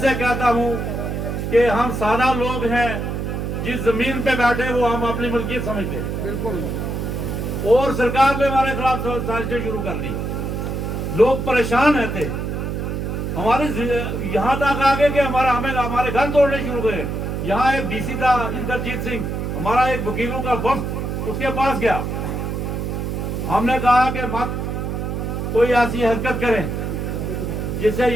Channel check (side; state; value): right; noise; hum, 3 dB below the sound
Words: कहता हूँ कि हम सादा लोग हैं, जिस जमीन पे बैठे वो हम अपनी मलकियत समझते हैं। बिल्कुल। और सरकार ने हमारे खिलाफ साजिशें शुरू कर दी। लोग परेशान रहते, हमारे यहाँ तक आ गए कि हमारे घर तोड़ने शुरू हुए। यहाँ एक DC था इंद्रजीत सिंह, हमारा एक वकीलों का वक्त उसके पास गया। हमने कहा कि मत कोई ऐसी हरकत करें जिससे